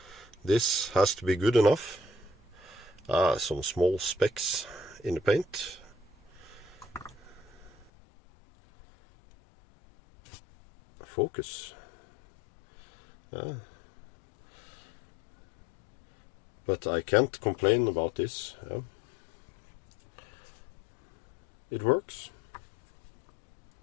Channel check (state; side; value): drops out; right; at 7.9 s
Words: this has to be good enough. Some small specks in the paint. focus. But I can't complain about this. It works.